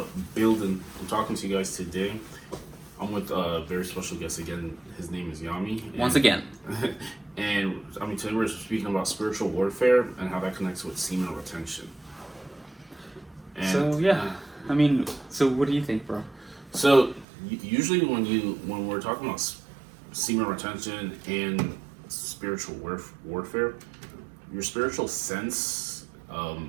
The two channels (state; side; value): drops out; left; at 17.2 s